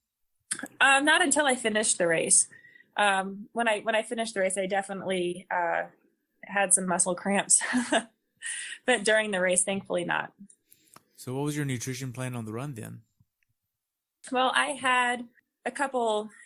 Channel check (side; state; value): both; identical; correlation 1.00